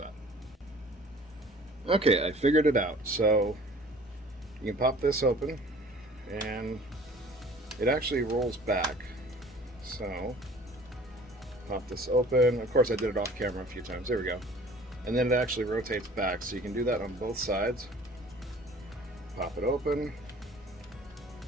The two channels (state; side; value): normal; both; correlation 0.49